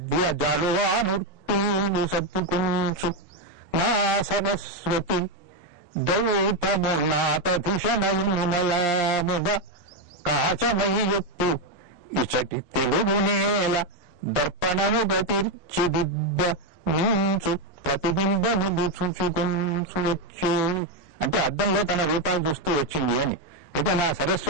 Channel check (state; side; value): late; right; 11 ms